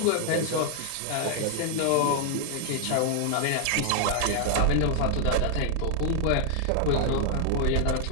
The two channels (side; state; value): both; different; correlation 0.00